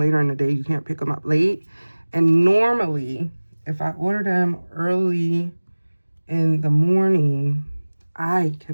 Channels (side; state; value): both; inverted; correlation -1.00